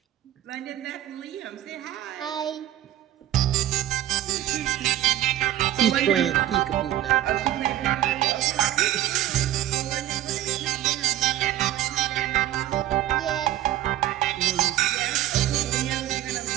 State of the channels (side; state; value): left; quieter; 13.1 dB